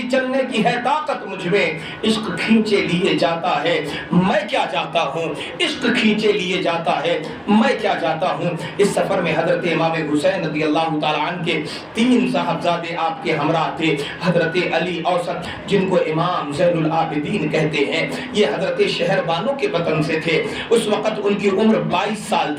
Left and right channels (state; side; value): identical; both; correlation 1.00